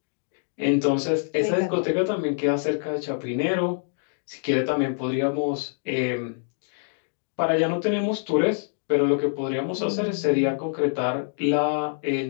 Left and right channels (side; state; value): right; silent; digital silence